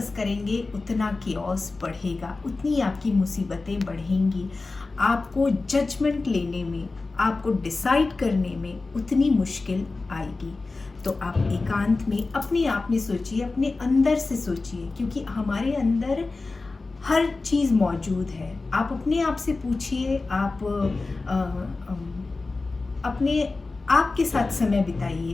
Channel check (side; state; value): right; quieter; 3.6 dB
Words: करेंगे उतना कियोस बढ़ेगा, उतनी आपकी मुसीबतें बढ़ेंगी। आपको जजमेंट लेने में, आपको डिसाइड करने में उतनी मुश्किल आएगी। तो आप एकांत में अपने आप में सोचिए, अपने अंदर से सोचिए, क्योंकि हमारे अंदर हर चीज़ मौजूद है। आप अपने आप से पूछिए, आप अपने आप के साथ समय बिताइए,